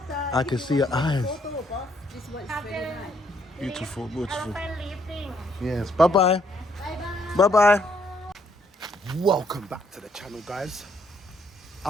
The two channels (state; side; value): normal; both; correlation 0.70